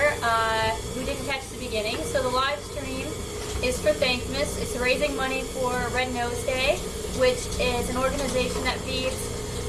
who didn't catch the beginning, so the live stream is for THANKMAS. It's raising money for Red Nose Day, which is an organization that feeds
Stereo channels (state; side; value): identical; both; correlation 1.00